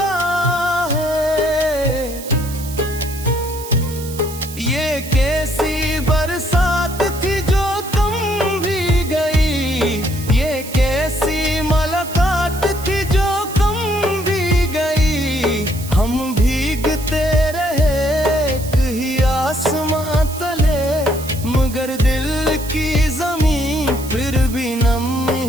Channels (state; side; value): noise; right; hiss, 13 dB below the sound